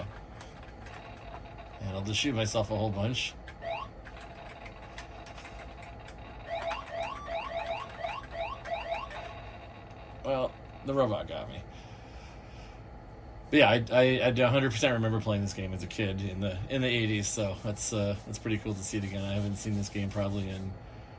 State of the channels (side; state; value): both; identical; correlation 1.00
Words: And I'll just shoot myself a whole bunch. Well, the robot got me. But yeah, I 100% remember playing this game as a kid in the 80s, so that's pretty cool to see it again. I haven't seen this game probably in,